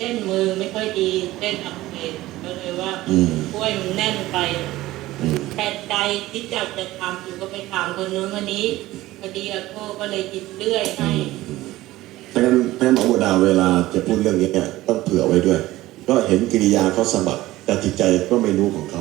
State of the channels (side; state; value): left; quieter; 17.0 dB